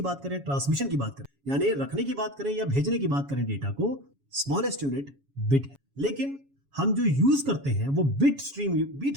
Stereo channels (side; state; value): left; late; 7.2 ms